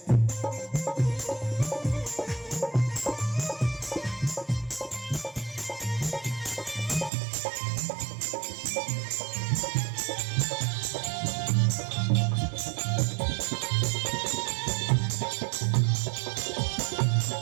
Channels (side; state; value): left; drops out; at 7.1 s